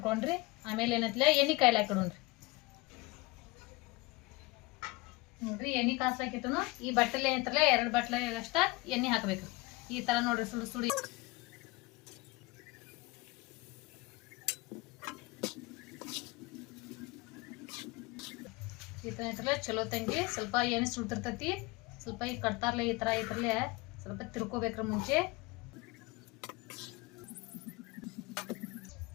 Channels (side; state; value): right; quieter; 23.0 dB